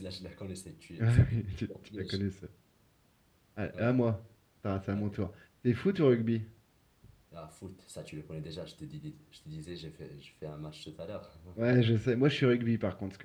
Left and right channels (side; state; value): both; identical; correlation 1.00